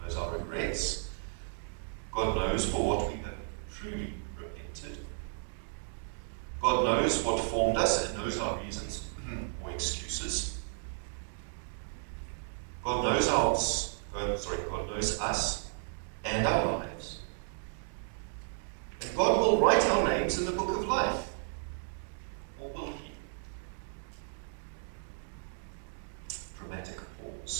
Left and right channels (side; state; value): left; silent; digital silence